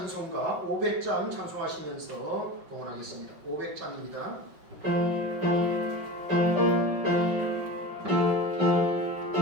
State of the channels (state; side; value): late; left; 5.6 ms